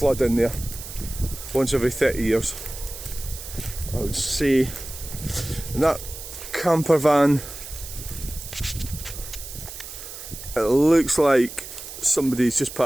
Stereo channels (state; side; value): noise; right; hiss, 12 dB below the sound